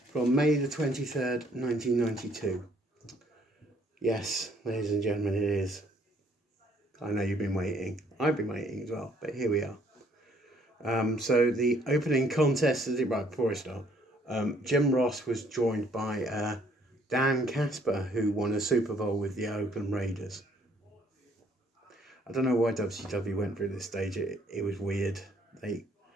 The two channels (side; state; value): both; normal; correlation 0.64